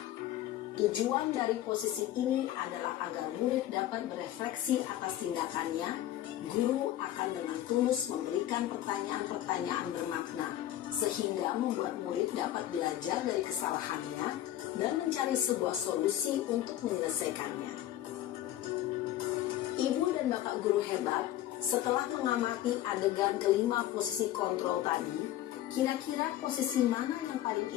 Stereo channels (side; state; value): right; quieter; 13.3 dB